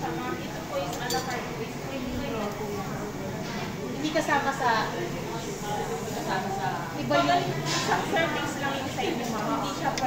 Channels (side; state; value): both; identical; correlation 1.00